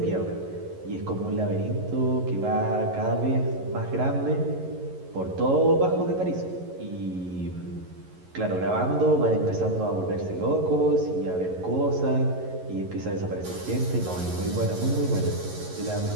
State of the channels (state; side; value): late; left; 11 ms